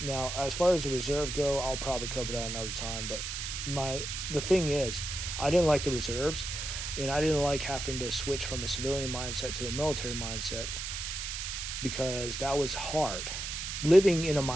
as far as the reserve go, I'll probably cover that another time, but the thing is, I didn't like the reserves, and I didn't like having to switch from a civilian mindset to a military mindset because that was hard. Living in a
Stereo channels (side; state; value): right; noise; hiss, 5 dB below the sound